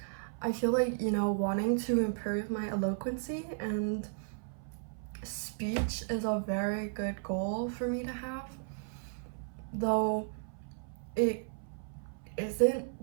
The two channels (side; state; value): left; silent; 55 dB below the other